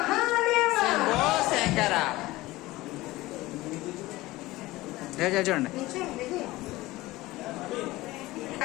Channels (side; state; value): right; quieter; 18.9 dB